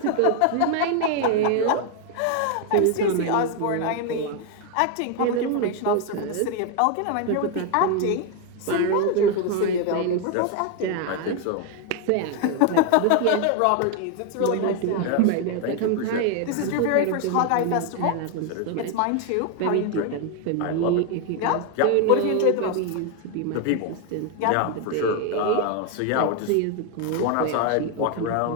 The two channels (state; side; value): different; both; correlation 0.01